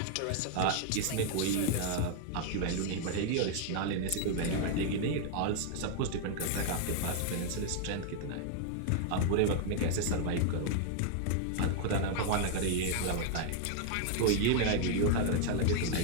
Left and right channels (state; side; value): different; both; correlation 0.00